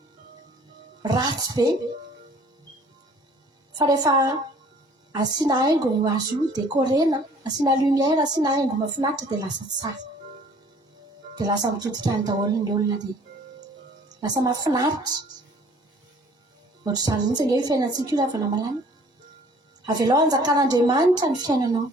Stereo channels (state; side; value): normal; both; correlation 0.54